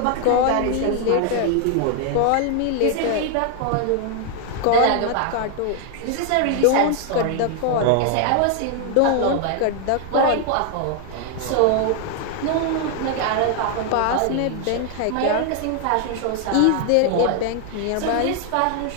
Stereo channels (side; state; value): both; different; correlation 0.00